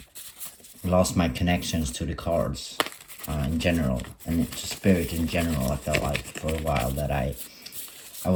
lost my connections to the cards. In general, and to spirit in general. I felt like for a while that I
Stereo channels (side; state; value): both; identical; correlation 1.00